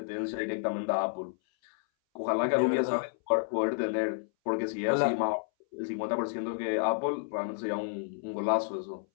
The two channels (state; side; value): silent; right; 57 dB below the other